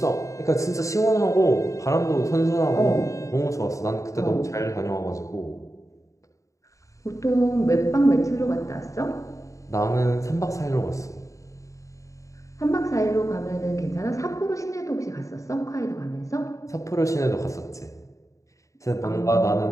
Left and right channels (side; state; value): right; late; 0.15 ms